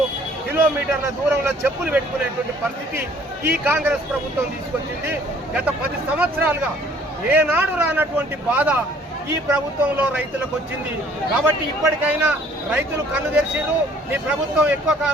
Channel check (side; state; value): both; normal; correlation 0.57